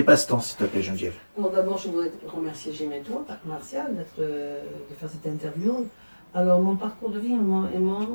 passe-temps, s'il te plaît, Geneviève. Bon, d'abord, je voudrais remercier Gémetto, Parc Martial, de faire cette interview. Alors, mon parcours de vie et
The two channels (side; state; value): both; inverted; correlation -1.00